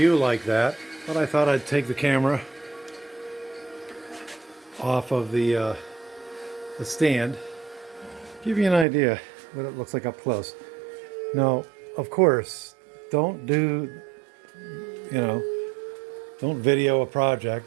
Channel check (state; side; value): drops out; left; at 8.8 s